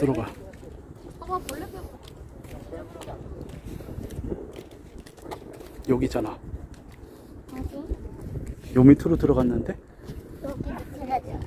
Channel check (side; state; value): both; identical; correlation 1.00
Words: 여기잖아. 어디? 요 밑으로 들어갔는데? 여기 밑에가 들어.